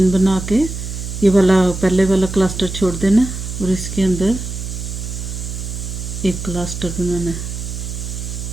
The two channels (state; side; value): noise; right; hum, 6 dB below the sound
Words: बना के ये वाला पहले वाला क्लस्टर छोड़ देना और इसके अंदर एक क्लस्टर बनाना है।